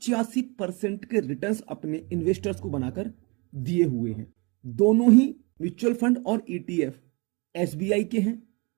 के रिटर्न्स अपने इन्वेस्टर्स को बनाकर दिए हुए हैं। दोनों ही म्यूचुअल फंड और ईटीएफ एसबीआई के हैं,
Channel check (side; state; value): left; quieter; 29.4 dB